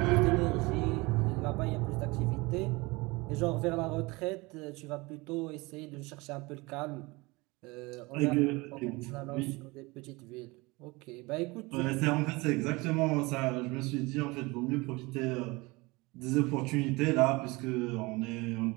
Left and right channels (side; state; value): left; quieter; 23.9 dB